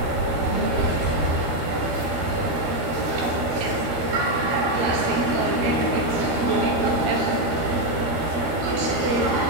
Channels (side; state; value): left; late; 13 ms